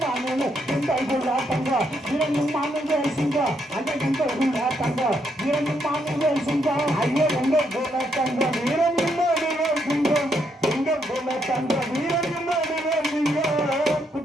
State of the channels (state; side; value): normal; both; correlation 0.76